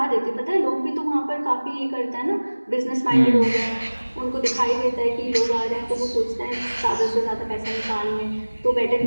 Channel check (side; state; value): both; inverted; correlation -1.00